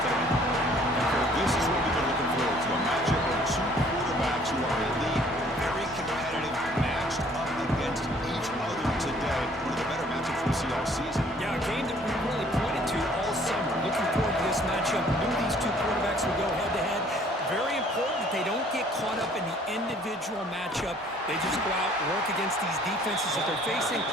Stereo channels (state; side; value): normal; both; correlation 0.58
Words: This is what we've been looking forward to, a matchup of two quarterbacks who are elite, very competitive, matched up against each other today. One of the better matchups we see all season. Yeah, a game that we really pointed to all summer. Looking forward to this matchup. Knew these two quarterbacks would go head-to-head. Very important that they don't get caught up in the individual matchup. They just go out, work against these defenses that they're facing,